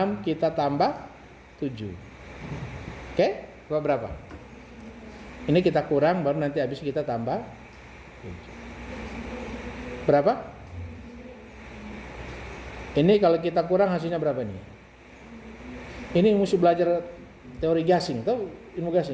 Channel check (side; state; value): both; identical; correlation 1.00